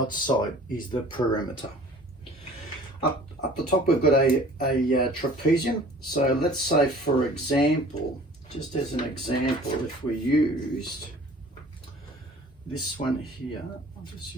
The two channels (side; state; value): both; normal; correlation 0.48